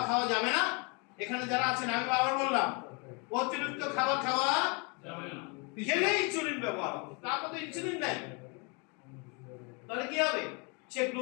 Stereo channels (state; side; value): quieter; right; 32.8 dB